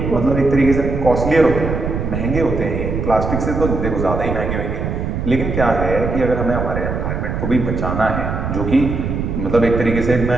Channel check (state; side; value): noise; right; rumble, 3 dB below the sound